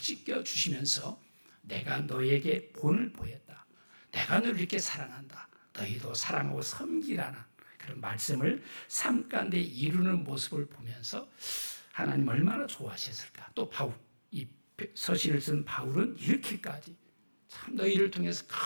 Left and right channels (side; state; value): both; inverted; correlation -1.00